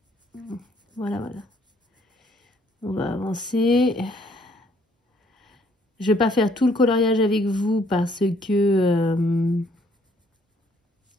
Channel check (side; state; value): both; normal; correlation 0.65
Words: Voilà, voilà. On va avancer. Je vais pas faire tout le coloriage avec vous parce que